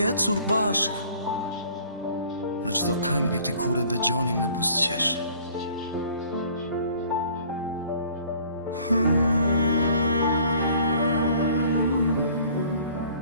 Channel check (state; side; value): inverted; both; correlation -0.54